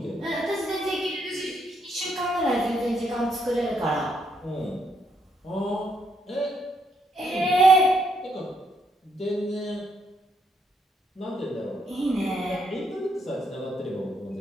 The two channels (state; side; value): normal; both; correlation 0.75